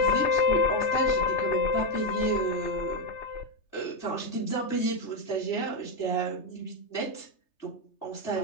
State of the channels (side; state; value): right; late; 3.3 ms